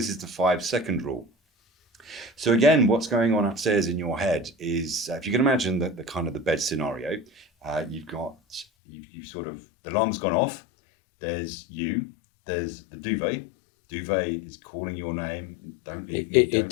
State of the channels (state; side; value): drops out; right; at 8.7 s